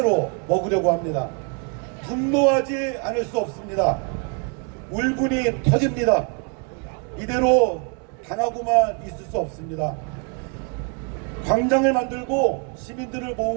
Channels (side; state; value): left; quieter; 37.0 dB